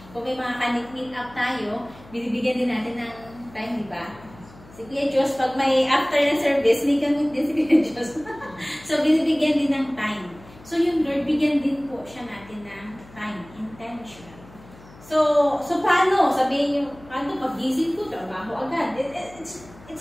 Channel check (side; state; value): left; noise; hum, 22 dB below the sound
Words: Kung may mga ka-meet up tayo, binibigyan din natin ng time, di ba? Si Kuya Diyos, pag may after na service, may gamit din si Kuya Diyos. So, binibigyan din ng time. So, yung Lord, bigyan din po siya natin ng time, intention. So paano? Sabihin nyo, paano pag-gising ko, trabaho agad.